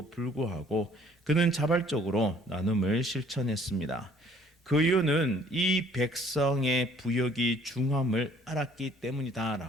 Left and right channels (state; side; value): normal; both; correlation 0.59